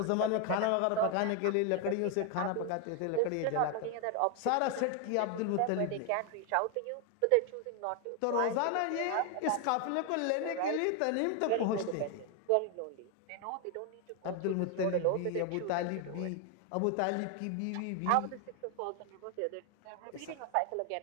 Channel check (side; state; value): both; different; correlation 0.01